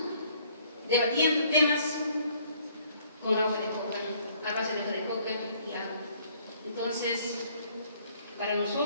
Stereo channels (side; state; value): both; inverted; correlation -0.62